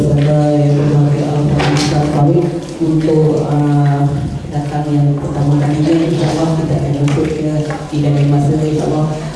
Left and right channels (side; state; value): both; identical; correlation 1.00